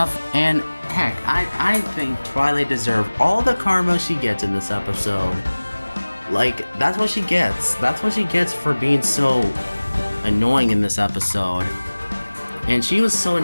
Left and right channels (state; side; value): inverted; both; correlation -1.00